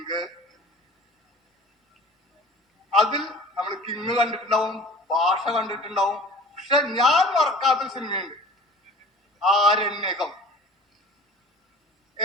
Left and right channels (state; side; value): normal; both; correlation 0.41